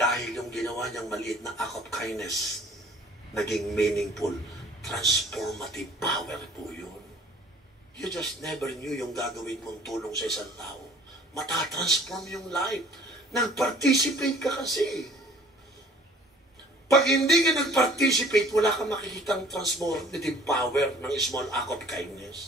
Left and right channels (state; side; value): normal; both; correlation 0.53